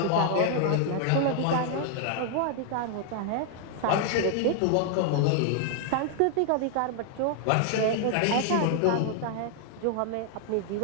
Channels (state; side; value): different; both; correlation 0.00